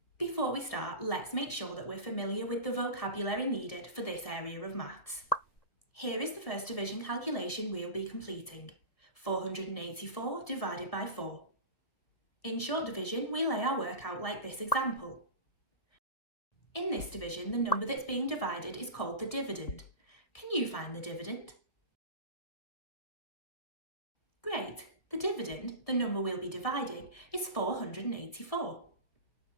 Before we start, let's make sure that we're familiar with the vocabulary needed for this area of maths. Here is the first division calculation we'll be completing. 484 divided by 4. In short division, we lay our work out like this example. In this division, the number that's being divided is called the dividend. Can you find the dividend? Great! The dividend, the number we'll be dividing, is 484.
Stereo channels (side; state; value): right; late; 2.0 ms